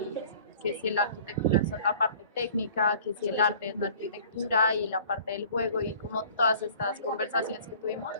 que si la arquitectura es la parte técnica, que si el arte es la arquitectura y la parte del juego y como todas estas conversaciones que tuvimos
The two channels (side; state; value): both; inverted; correlation -0.49